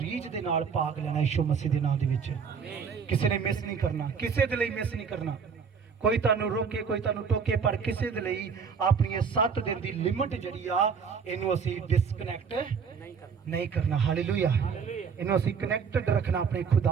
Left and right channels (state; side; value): quieter; left; 6.1 dB